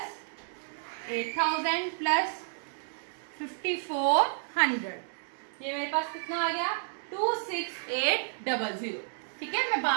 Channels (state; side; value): silent; left; digital silence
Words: 8000 प्लस 5400, ये मेरे पास कितना आ गया 26800। ठीक है, मैं